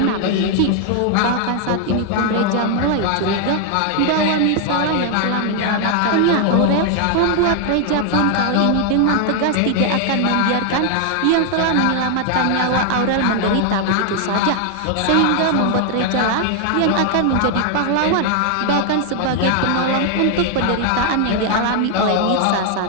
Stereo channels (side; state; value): both; different; correlation 0.00